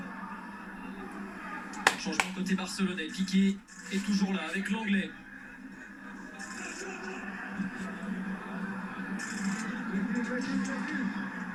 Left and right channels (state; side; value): identical; both; correlation 1.00